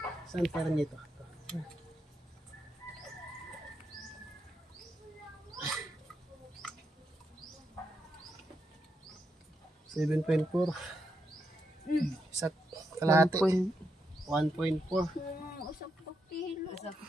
Saan parang nito? 7.4. Sa kalahati. 1.4. Usap pa kilo. Usap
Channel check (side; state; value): both; normal; correlation 0.82